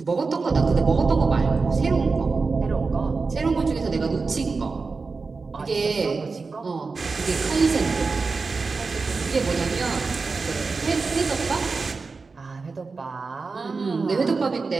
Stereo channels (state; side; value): quieter; left; 4.3 dB